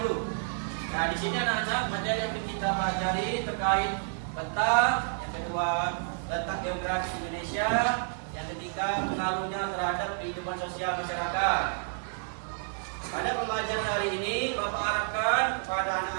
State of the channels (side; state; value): left; silent; digital silence